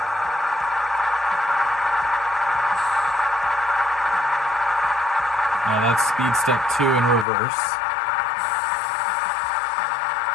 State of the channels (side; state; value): right; drops out; at 7.2 s